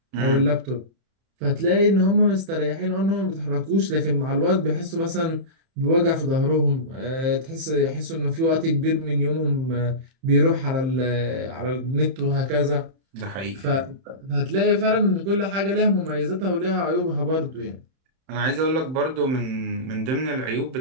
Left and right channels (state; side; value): late; left; 31 ms